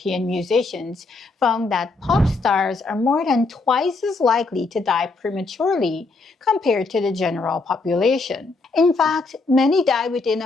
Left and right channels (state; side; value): quieter; right; 3.7 dB